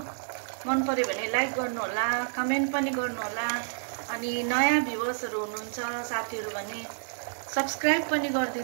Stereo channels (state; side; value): silent; left; digital silence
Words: मन पर्यो भने लाइक गर्नु होला, कमेन्ट पनि गर्नु होला। अनि नयाँ भ्युअर्सहरु हुनुहुन्छ साथीहरु भने सब्स्क्राइब पनि